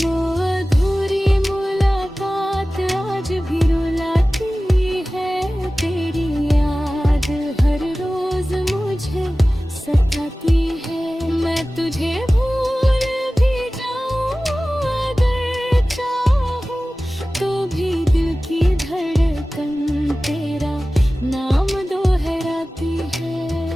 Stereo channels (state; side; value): normal; both; correlation 0.96